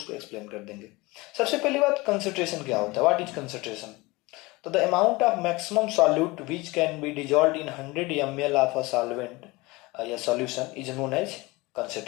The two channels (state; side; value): quieter; right; 22.8 dB